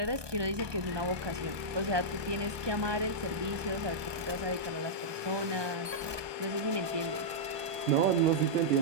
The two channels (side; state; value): left; late; 1.2 ms